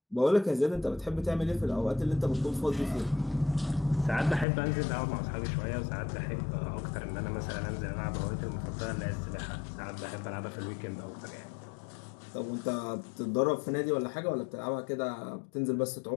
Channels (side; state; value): right; drops out; at 4.5 s